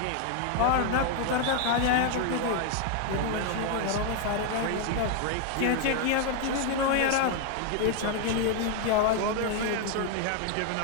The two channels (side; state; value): both; different; correlation 0.00